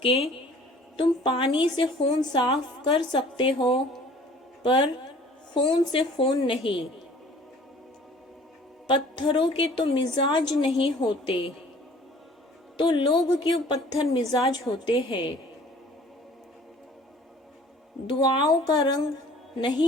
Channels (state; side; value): normal; both; correlation 0.50